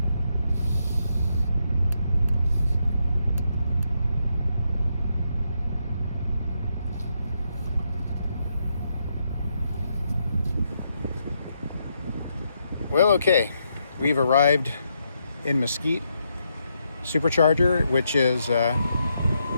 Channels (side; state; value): both; inverted; correlation -0.79